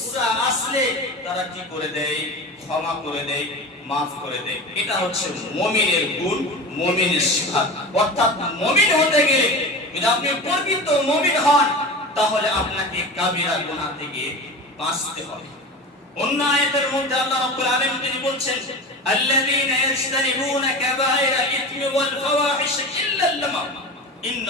আসলে তারা কি করে দেয়? ক্ষমা করে দেয়, maaf করে দেয়। এটা হচ্ছে মুমিনের গুণ, মুমিনের সিফাত। অর্থাৎ মুমিন হতে গেলে, যদি আপনি প্রকৃত মুমিন হন, তাহলে আপনাকে কাবিরা গুনাহ থেকে বাঁচতে হবে। অন্য আয়াতের মধ্যে আল্লাহ রাব্বুল আলামিন তিনি বলছেন, আল্লাযীনা ইয়াজতানিবুনা কাবায়রা ইথমি ওয়াল ফাওয়াহিশ ইল্লা আল-লাম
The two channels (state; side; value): normal; both; correlation 0.30